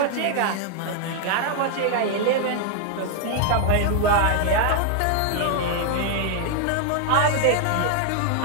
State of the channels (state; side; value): different; both; correlation 0.00